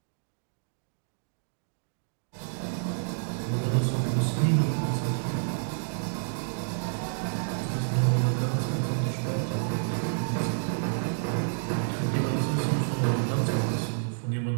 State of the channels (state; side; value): silent; left; digital silence